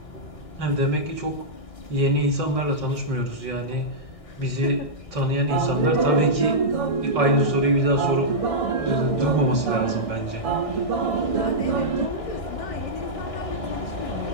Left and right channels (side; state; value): right; late; 1.6 ms